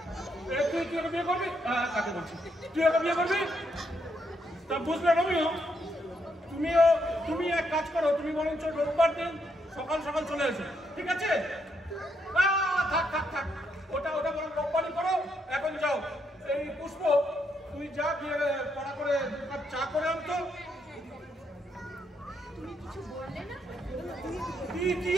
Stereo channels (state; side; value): normal; both; correlation 0.77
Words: তুই ওকে বিয়ে করবি? কাকে বলছি, তুই ওকে বিয়ে করবি? তা বুঝলে রমিও, তুমি এক কাজ করো, তুমি বরঞ্চ রোববার দিন সকাল সকাল চলে এসো, ঠিক আছে? থাক থাক থাক, ওটা বরং রোববারই করো। এখন যাও, এই পুষ্প তুই যা গিয়ে পড়া করে চা করে আনতো। তুমি কিছু বললে না? কি